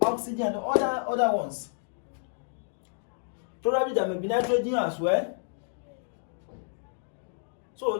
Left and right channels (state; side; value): silent; right; digital silence